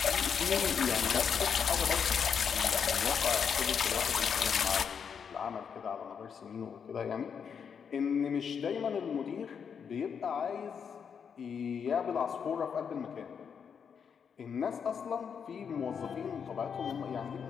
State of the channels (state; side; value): quieter; right; 7.0 dB